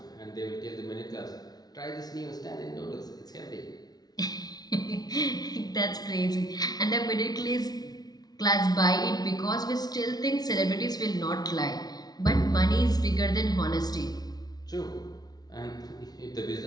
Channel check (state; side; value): late; right; 0.19 ms